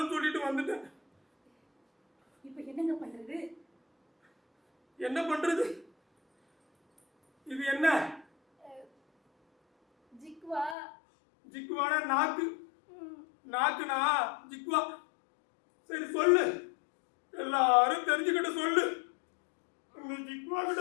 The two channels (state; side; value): drops out; right; at 10.8 s